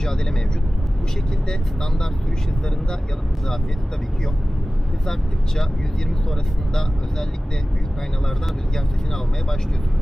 mevcut. Bu şekilde standart sürüş hızlarında yalıtım zafiyeti tabii ki yok. Hız arttıkça 120 sonrasında özellikle büyük aynalardan rüzgar sesini almaya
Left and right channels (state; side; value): normal; both; correlation 0.97